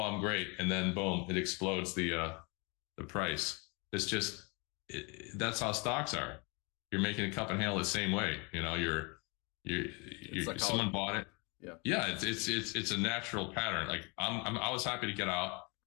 I'm great. And then boom, it explodes the price. It's just, that's how stocks are. You're making a cup and handle the same way. You know, Someone bought it. Yeah. Yeah, it's a natural pattern. Like I was happy to get out,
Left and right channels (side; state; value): right; quieter; 30.8 dB